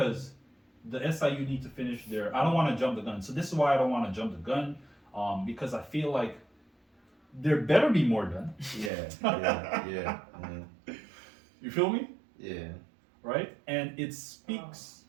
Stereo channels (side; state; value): left; drops out; at 8.9 s